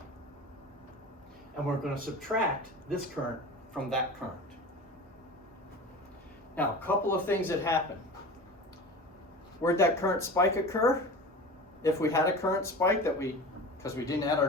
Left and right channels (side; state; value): both; normal; correlation 0.33